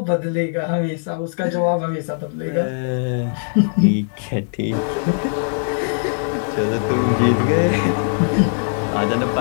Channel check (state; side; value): silent; right; 61 dB below the other